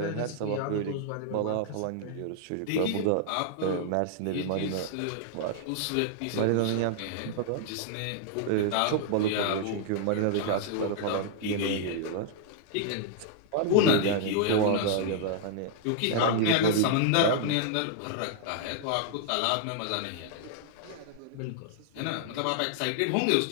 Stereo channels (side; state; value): both; different; correlation -0.01